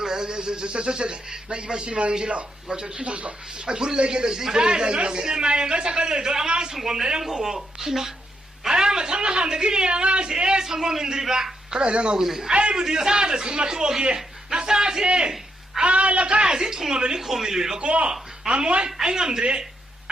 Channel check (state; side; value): normal; both; correlation 0.79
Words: 나 이번 시만 실러 거저 순서서 아 불을 내게 돼 이거 너 시네마에 거 작가들도 아마 성공 내는 거고 희나 아마 장난한데 그래 아마 제 성공인들이 봐 그래 내가 오고 있네 아이고 네 사다 정말 또 오기 나 사지 아 라카지 통화변이 고민을 받고 아뭐 아잉암들이